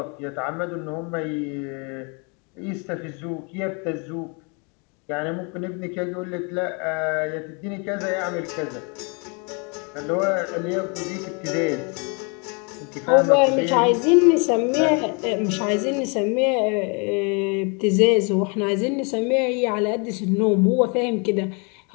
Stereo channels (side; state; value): right; quieter; 33.9 dB